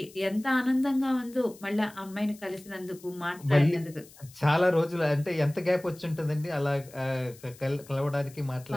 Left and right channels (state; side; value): noise; left; hiss, 22 dB below the sound